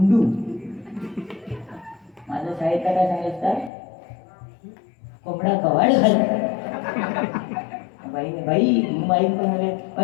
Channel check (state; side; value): drops out; right; at 3.7 s